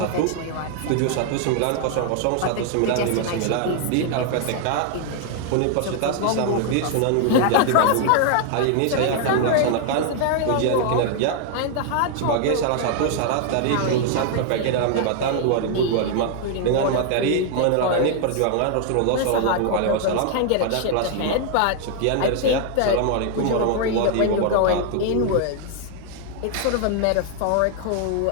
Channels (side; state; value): both; different; correlation 0.00